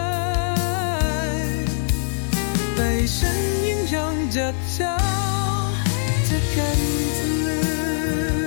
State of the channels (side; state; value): right; silent; digital silence